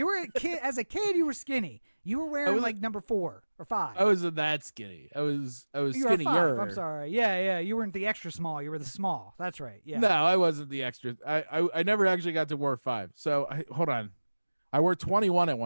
were a kid. As a kid, you were skinny. You were wearing like number 4 or 5. I wasn't that skinny. I was you were 5. I'm sorry. Yeah. You weren't the extra small. You were the small. That's right. Yeah. No, I wasn't the extra. I never actually got to wear 5. So hold on. I wore 21 at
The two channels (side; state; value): both; inverted; correlation -1.00